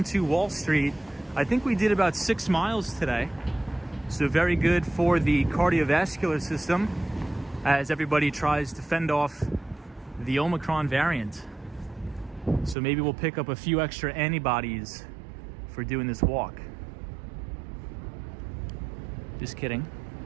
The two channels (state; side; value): drops out; left; at 12.8 s